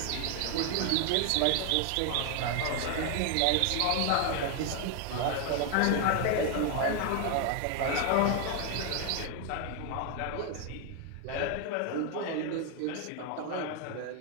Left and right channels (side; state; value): both; different; correlation 0.01